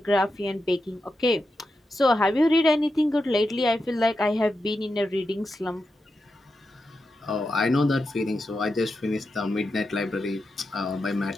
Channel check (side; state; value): both; normal; correlation 0.88